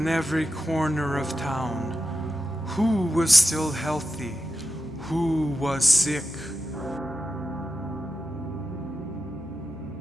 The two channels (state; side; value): normal; both; correlation 0.90